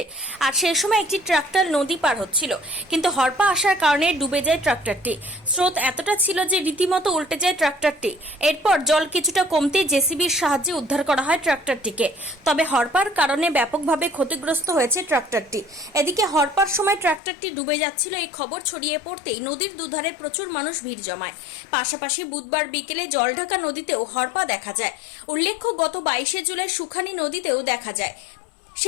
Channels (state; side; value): drops out; right; at 17.2 s